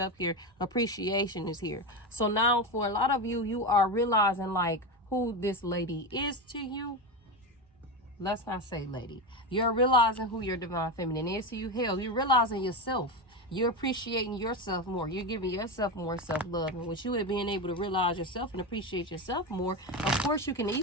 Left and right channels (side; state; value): both; normal; correlation 0.17